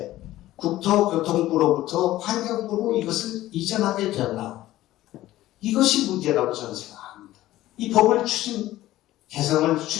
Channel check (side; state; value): right; quieter; 15.3 dB